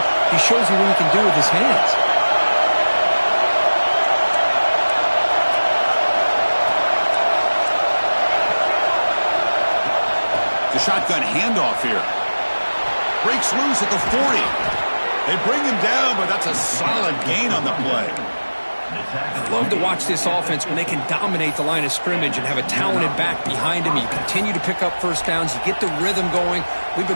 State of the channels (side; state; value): both; inverted; correlation -1.00